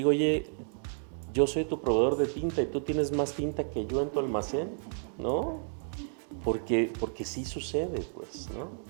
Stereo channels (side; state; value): left; silent; digital silence